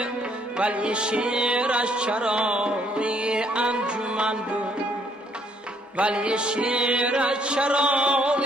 ولی شعرش چراغی انجمن بود. ولی شعرش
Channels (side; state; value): both; normal; correlation 0.68